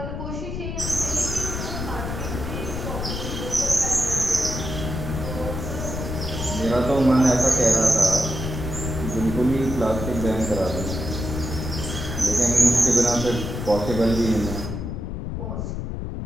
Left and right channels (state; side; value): noise; left; rumble, 5 dB below the sound